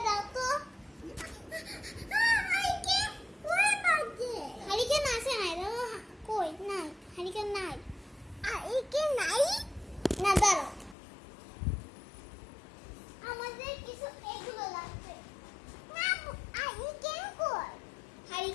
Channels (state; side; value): drops out; right; at 11.0 s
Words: দাও তো। হারিকেন আছে না? কই নাই, হারিকেন নাই। হারিকেন নাই না, দাঁড়াও, আমাদের কিছু এগুলো লাগবে। না, হারিকেন কই?